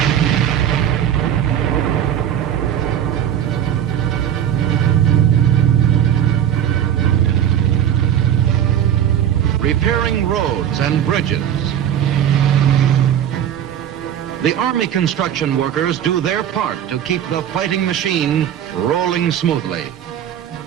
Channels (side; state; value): left; quieter; 10.1 dB